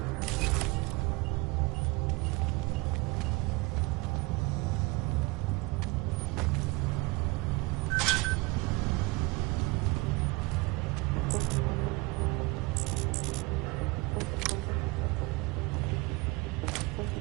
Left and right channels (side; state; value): left; quieter; 25.0 dB